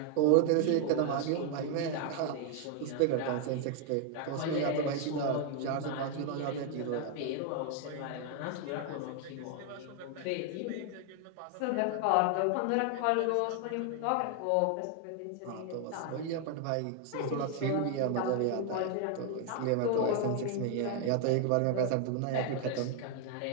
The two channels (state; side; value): different; both; correlation 0.00